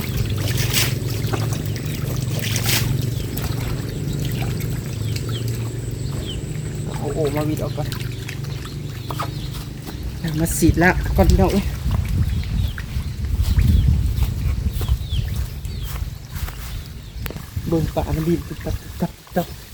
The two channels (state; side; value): identical; both; correlation 1.00